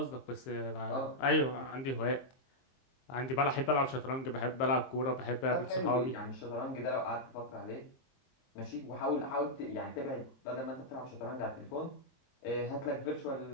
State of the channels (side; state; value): right; late; 23 ms